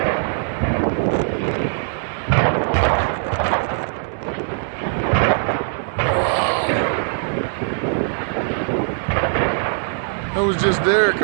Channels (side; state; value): left; silent; 62 dB below the other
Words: I was just there a